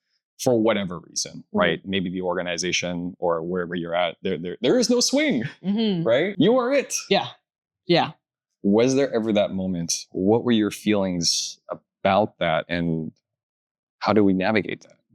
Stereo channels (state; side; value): identical; both; correlation 1.00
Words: For whatever reason, right? Maybe the organization or wherever you're at, there is no swing, right? You are it. Yeah. Yeah. Was there ever that moment? What were your feelings about that? And how do we navigate that?